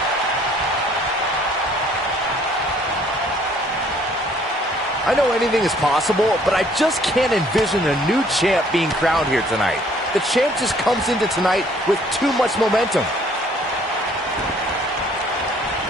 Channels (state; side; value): normal; both; correlation 0.60